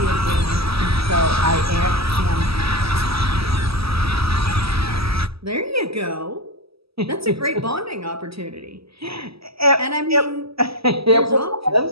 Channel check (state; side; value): late; left; 0.76 ms